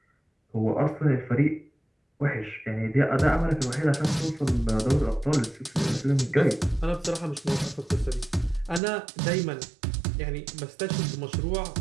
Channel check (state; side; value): drops out; left; at 8.8 s